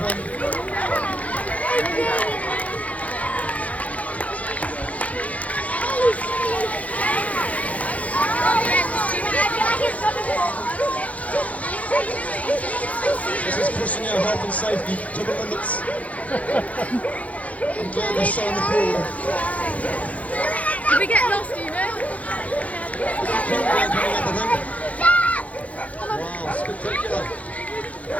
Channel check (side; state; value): right; late; 0.068 ms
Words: This is pushing our health and safety to the limits. I'm glad we saw in the pool. If we get lost, you know? Wow, spectacular.